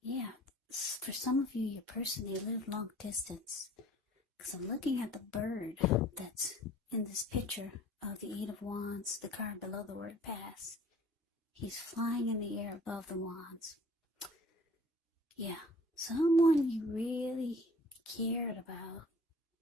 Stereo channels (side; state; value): both; normal; correlation 0.50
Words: Yeah, for some of you, your person, they live long distance. Because I'm looking at the bird that's in this picture of the Eight of Wands, the card below the word pass. He's flying in the air above the wands. Yeah, someone you really cared about,